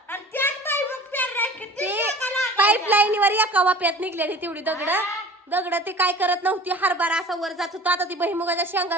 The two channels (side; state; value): both; normal; correlation 0.43